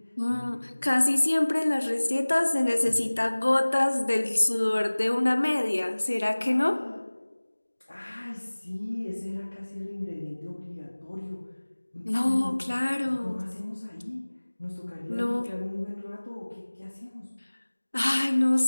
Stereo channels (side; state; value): both; inverted; correlation -1.00